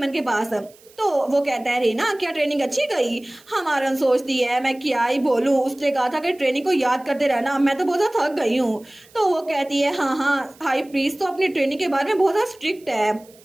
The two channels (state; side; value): noise; right; hiss, 27 dB below the sound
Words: के पास। तो वो कहता है रेना क्या ट्रेनिंग अच्छी गई? हमारन सोचती है मैं क्या ही बोलूं, उसने कहा था कि ट्रेनिंग को याद करते रहना, मैं तो बहुत ज्यादा थक गई हूँ। तो वो कहती है हाँ हाई प्रीस्ट तो अपनी ट्रेनिंग के बारे में बहुत ज्यादा स्ट्रिक्ट है।